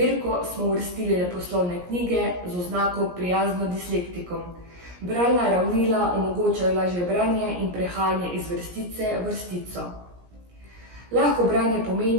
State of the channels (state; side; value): late; left; 17 ms